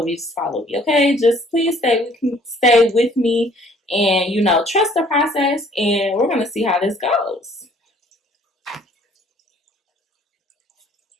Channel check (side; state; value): both; normal; correlation 0.58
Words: me. Okay? Just please stay with me and, you know, trust the process. And we're going to see how this goes.